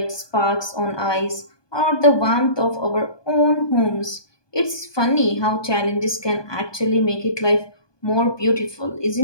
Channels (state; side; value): late; right; 1.2 ms